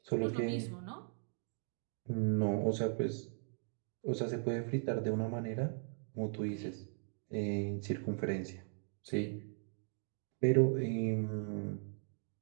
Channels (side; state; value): left; silent; 52 dB below the other